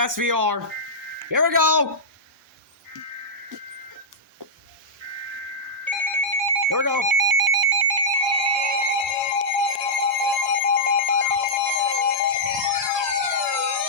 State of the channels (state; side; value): normal; both; correlation -0.11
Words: Here we go. Here we go.